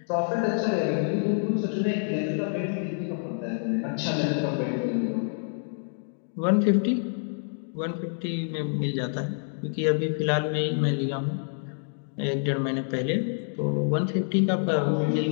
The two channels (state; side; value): silent; right; digital silence